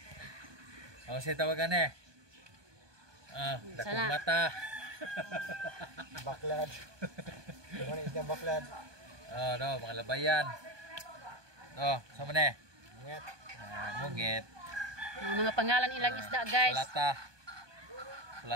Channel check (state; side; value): late; left; 1.2 ms